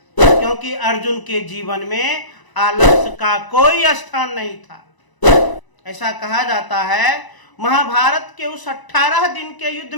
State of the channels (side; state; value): right; late; 1.0 ms